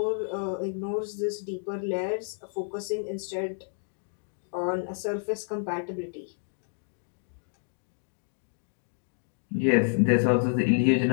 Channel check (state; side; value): silent; right; digital silence